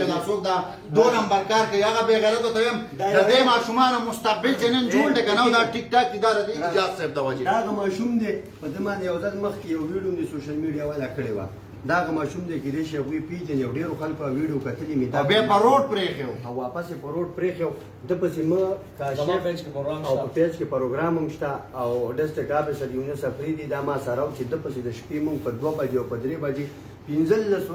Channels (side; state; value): both; identical; correlation 1.00